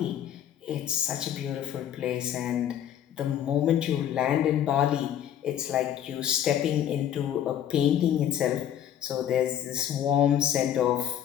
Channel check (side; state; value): right; quieter; 10.3 dB